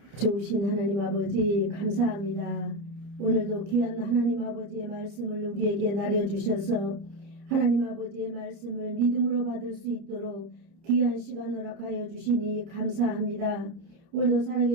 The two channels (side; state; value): left; late; 29 ms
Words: 좋으신 하나님 아버지 감사합니다. 오늘도 귀한 하나님 아버지의 말씀을 우리에게 나려주셔서 하나님 아버지의 말씀을 믿음으로 받을 수 있도록 귀한 시간 허락하여 주시니 감사합니다. 오늘도